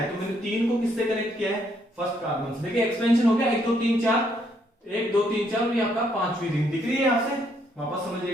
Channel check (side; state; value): both; normal; correlation 0.71